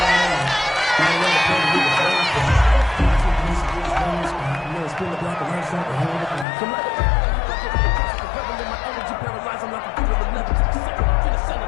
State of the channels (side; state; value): right; drops out; at 6.5 s